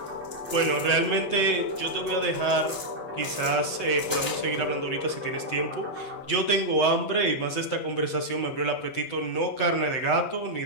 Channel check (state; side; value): late; right; 8.1 ms